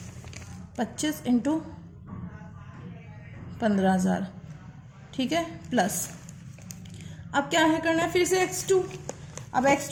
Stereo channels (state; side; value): identical; both; correlation 1.00